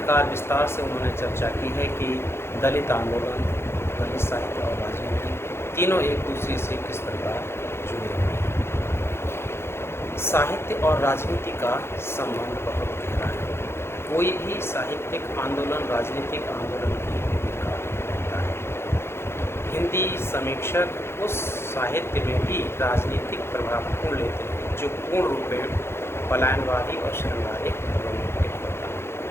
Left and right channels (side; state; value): right; late; 0.12 ms